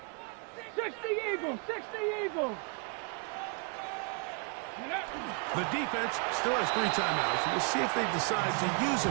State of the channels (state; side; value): quieter; left; 36.8 dB